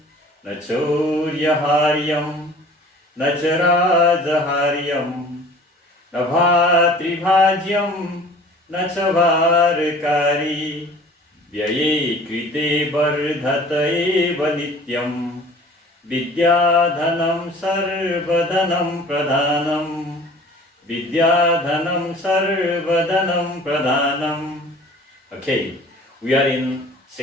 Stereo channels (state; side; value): normal; both; correlation 0.47